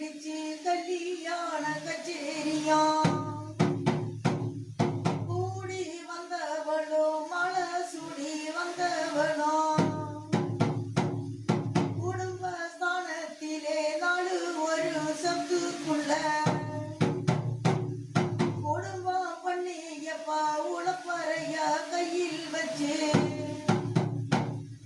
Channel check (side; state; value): both; identical; correlation 1.00